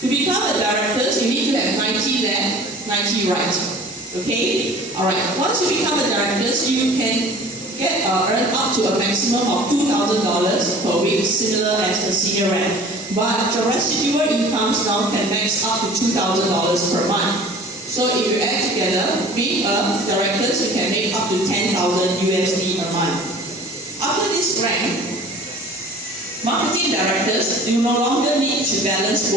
become a director, you need to have 90 left, 90 right. Okay? Alright, once you become a director, you can earn up to a maximum of $2,000 per week, similar as the senior rank. But the residual incomes now can max up to $2,000 per month. So if you add together, being a director, you can make up to $10,000 USD a month. After this rank, marketing directors, you no longer need to balance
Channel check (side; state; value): both; normal; correlation 0.45